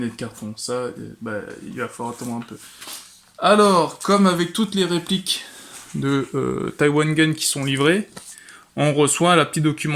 et de carton. Ça, il va falloir attendre un peu. Alors, comme avec toutes les répliques de Taiwan Gun qui sont livrées, on reçoit la petite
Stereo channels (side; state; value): both; identical; correlation 1.00